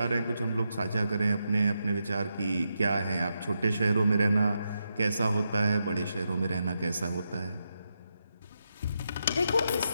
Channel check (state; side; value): inverted; both; correlation -0.84